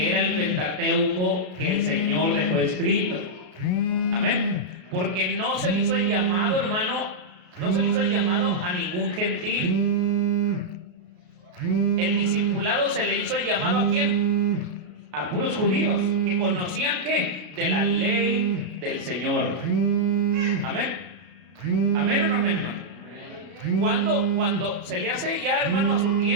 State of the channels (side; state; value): left; late; 33 ms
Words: era el Pentateuco que el Señor dejó escrito. Amén. Porque no se le hizo el llamado, hermano, no se le hizo el llamado a ningún gentil. El discipulado se le hizo el llamado ¿a quién? A puros judíos, que conocían ¿qué? De la ley del Señor. Amén. Amén o no amén, hermano. Cuando se le hace ya, hermano, a su